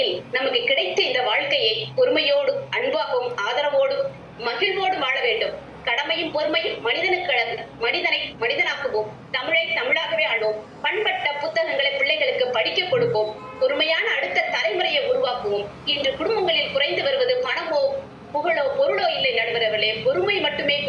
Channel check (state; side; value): identical; both; correlation 1.00